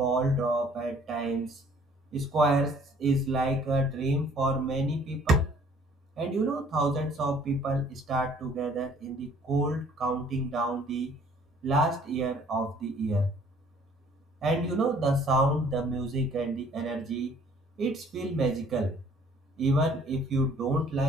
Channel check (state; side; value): normal; both; correlation 0.57